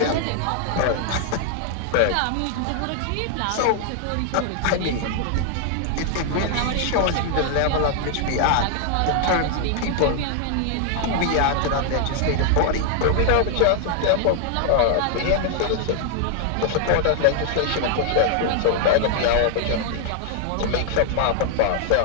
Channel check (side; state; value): both; different; correlation 0.00